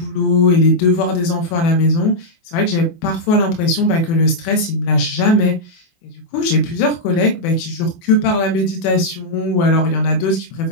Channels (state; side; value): late; right; 24 ms